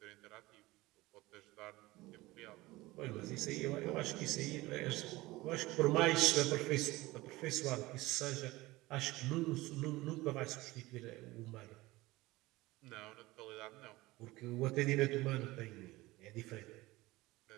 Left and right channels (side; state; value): left; quieter; 19.7 dB